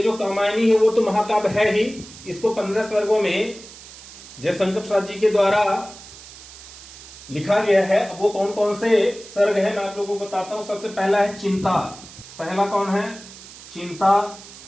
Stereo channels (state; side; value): noise; right; hiss, 17 dB below the sound